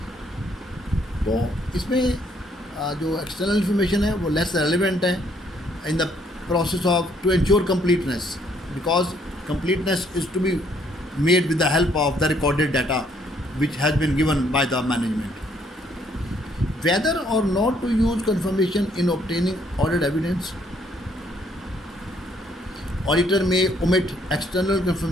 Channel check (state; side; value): normal; both; correlation 0.67